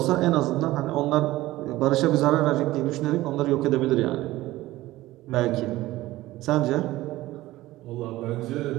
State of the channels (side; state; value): left; quieter; 17.1 dB